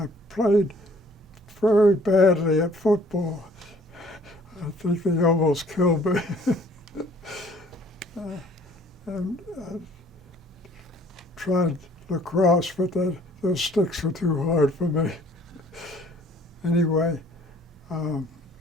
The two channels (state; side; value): normal; both; correlation 0.57